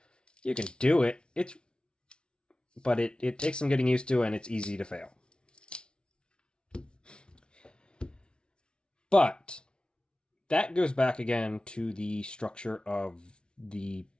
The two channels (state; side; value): late; right; 0.056 ms